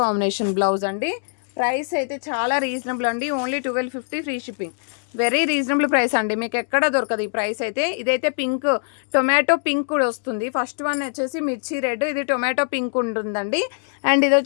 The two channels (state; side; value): silent; right; digital silence